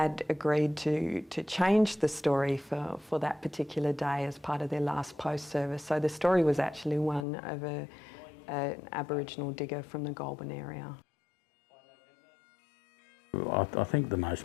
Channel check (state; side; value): drops out; right; at 7.2 s